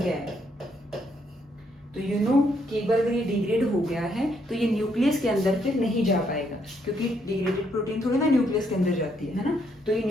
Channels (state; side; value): normal; both; correlation 0.73